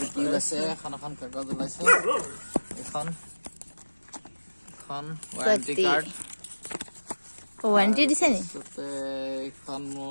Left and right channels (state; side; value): inverted; both; correlation -1.00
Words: কি ওলাইছে এখন কাগজ ওলাইছে এখন ৱাৰেণ্টি কাৰ্ড ৱাৰেণ্টি দিছে নি এখন